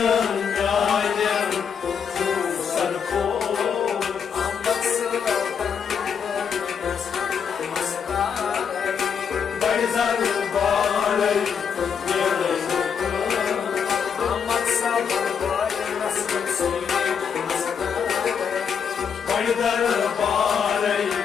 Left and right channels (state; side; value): quieter; right; 7.0 dB